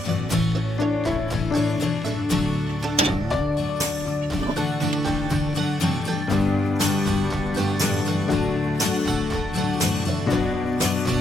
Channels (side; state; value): both; normal; correlation 0.79